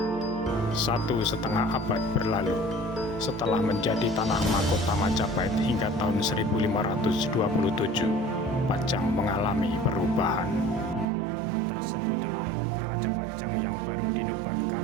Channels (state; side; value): drops out; left; at 11.1 s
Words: 1,5 abad berlalu, setelah menjadi tanah mahkota Majapahit hingga tahun 1527, Pajang mengalami perubahan. Tersebutlah Raja Pajang yang baru dinubatkan